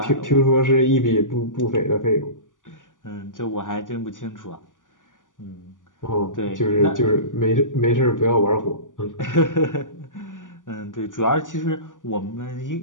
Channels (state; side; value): late; right; 0.88 ms